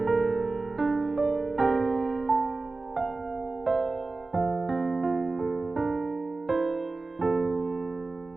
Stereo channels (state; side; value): quieter; left; 3.5 dB